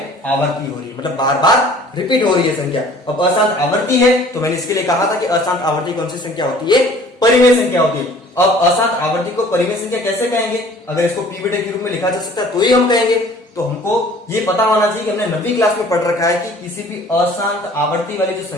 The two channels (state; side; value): normal; both; correlation 0.51